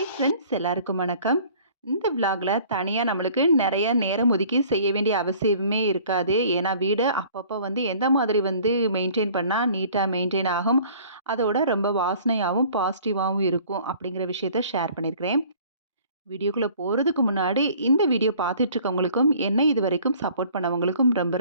friends, எல்லாருக்கும் வணக்கம். இந்த விலாகில் தனியாக நம்மளுக்கு நிறைய நேரம் ஒதுக்கி செய்ய வேண்டிய அவசியமே இருக்காது. ஏன்னா வீடு அப்பப்போ எந்த மாதிரி மெயின்டைன் பண்ணால் நீட்டாக மெயின்டைன் ஆகும், அதோட ரொம்ப வாசனையாகவும் பாசிட்டிவாகவும் இருக்கும் அப்படிங்கிற விஷயத்த ஷேர் பண்ணியிருக்கிறேன். வீடியோக்குள்ளே போகிறதுக்கு முன்னாடி இந்த வீடியோ பார்த்துட்ருக்கவங்களுக்கும் என்ன இது வரைக்கும் சப்போர்ட் பண்ணவங்களுக்கும் ரொம்ப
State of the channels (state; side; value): inverted; both; correlation -0.52